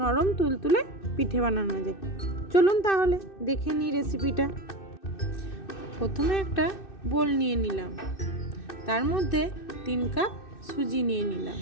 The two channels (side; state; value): right; late; 2.6 ms